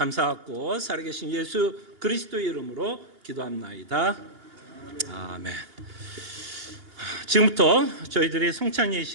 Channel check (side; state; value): left; late; 2.8 ms